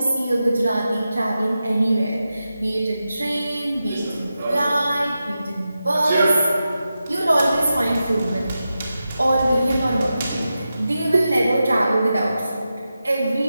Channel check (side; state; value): both; inverted; correlation -0.91